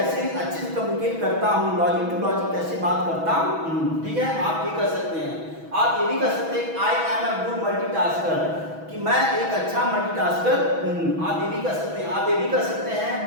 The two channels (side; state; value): left; late; 6.1 ms